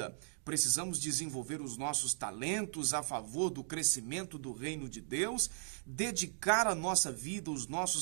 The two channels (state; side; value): silent; left; digital silence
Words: Precisamos desenvolver os nossos talentos a favor do crescimento do reino de Deus, dedicar a nossa vida, os